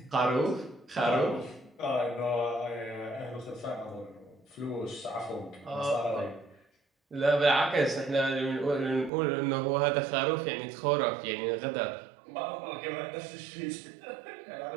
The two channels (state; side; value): drops out; left; at 9.1 s